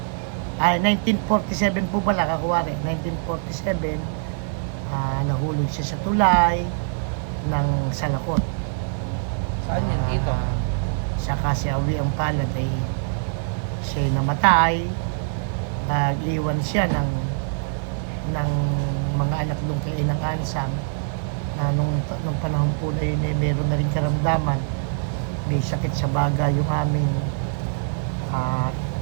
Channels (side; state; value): left; silent; digital silence